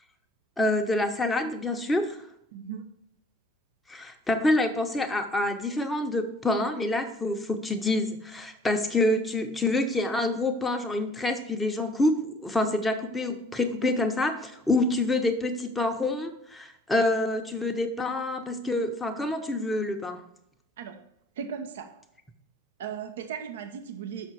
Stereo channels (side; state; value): both; normal; correlation 0.57